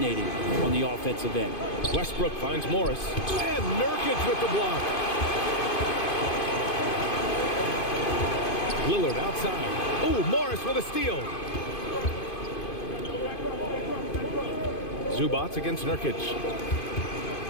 on the offensive end. Westbrook finds Morris. And Nurkic with the block. Lillard outside. Oh, Morris with a steal. Zubac against Nurkic.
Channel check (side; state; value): right; late; 2.5 ms